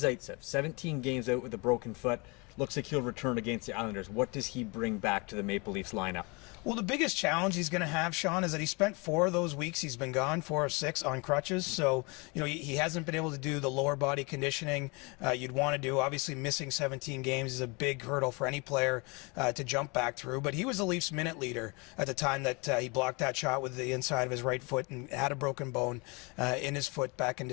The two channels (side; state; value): right; quieter; 28.7 dB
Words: 17 games out with a broken foot. Looks like he'll return against the Islanders. What does he bring back to the Maple Leafs lineup? Well, the biggest challenge he's going to have, Sean, is that he spent 4 of those weeks he's been gone, 4 of 6 on crutches. So, you know, he hasn't been able to do the lower body conditioning you'd want to do. Obviously, missing 17 games is a big hurdle for any player to jump back through. But he was the Leafs minute leader at the time that he blocked that shot with the inside of his right foot and had a broken bone in his foot back in